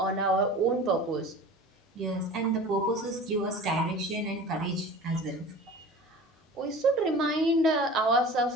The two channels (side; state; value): both; normal; correlation 0.39